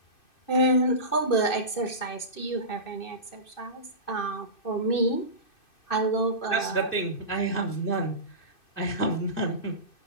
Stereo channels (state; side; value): late; right; 2.6 ms